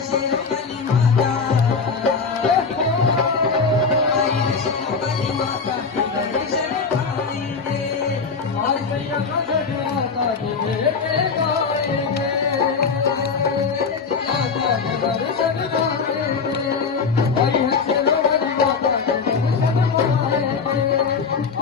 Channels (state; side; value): quieter; right; 5.2 dB